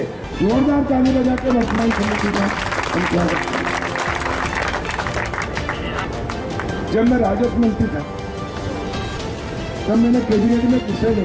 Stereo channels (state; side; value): identical; both; correlation 1.00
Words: जोरदार ताली बजा के वर्तमान समिति का हम क्या करते हैं। जब मैं राजस्व मंत्री था तब मैंने कैबिनेट में विषय